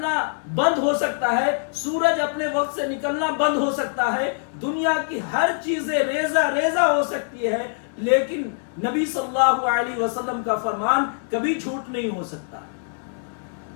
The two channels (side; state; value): right; silent; digital silence